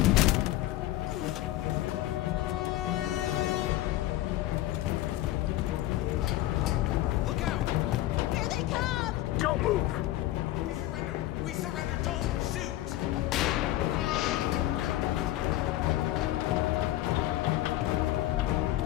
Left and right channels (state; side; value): quieter; right; 15.4 dB